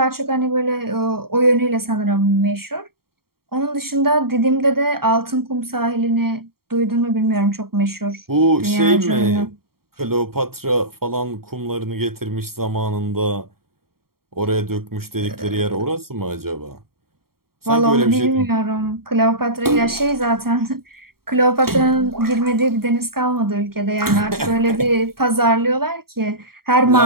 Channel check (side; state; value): left; late; 0.93 ms